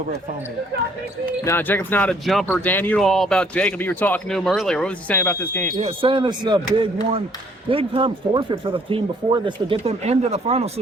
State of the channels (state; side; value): normal; both; correlation 0.63